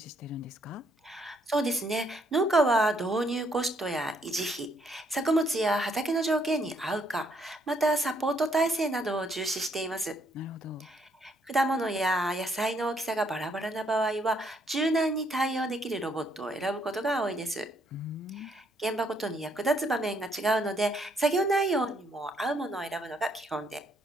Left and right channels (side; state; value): both; normal; correlation 0.71